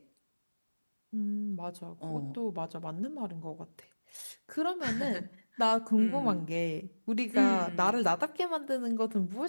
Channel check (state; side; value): inverted; both; correlation -1.00